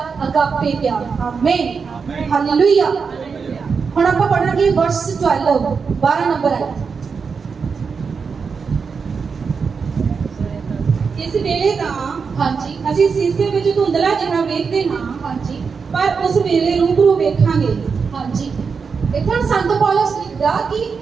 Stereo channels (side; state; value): left; quieter; 5.5 dB